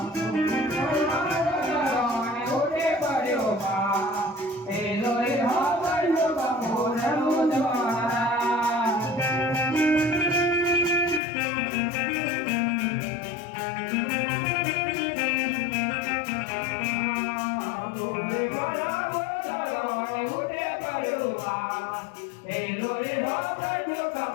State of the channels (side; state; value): right; drops out; at 11.2 s